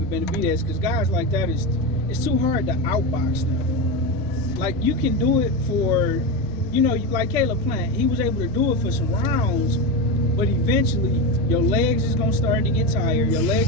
Benavides, because guys like that, it's too hard to outbox them. Like, you can do it for, like Caleb Plant, he was able to do it for some rounds, but eventually your legs is gonna start to get tired, your legs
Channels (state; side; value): normal; both; correlation 0.17